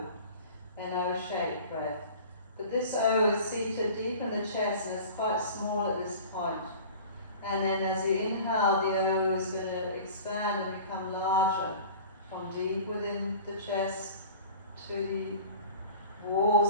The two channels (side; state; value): both; inverted; correlation -0.41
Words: O-shaped breath. But this O is seated deep in the chest and it's quite small at this point. And then as you inhale, the O is going to expand and become larger from deep within the chest to the